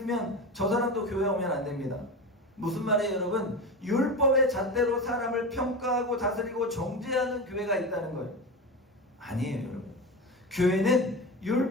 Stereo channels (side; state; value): both; normal; correlation 0.24